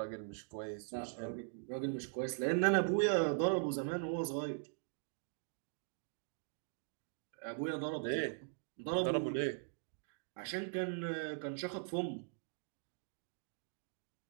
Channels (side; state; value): left; silent; digital silence